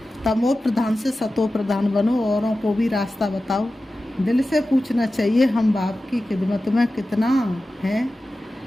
तमो प्रधान से सतो प्रधान बनो, औरों को भी रास्ता बताओ। दिल से पूछना चाहिए हम बाप की खिदमत में कितना है,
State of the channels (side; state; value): both; normal; correlation 0.94